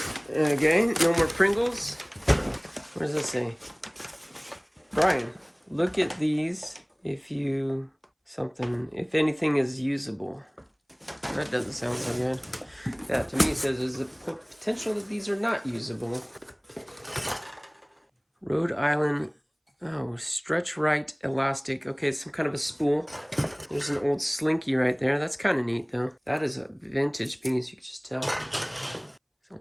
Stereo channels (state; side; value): identical; both; correlation 1.00